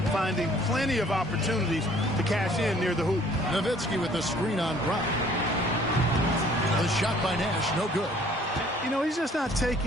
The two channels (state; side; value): normal; both; correlation 0.57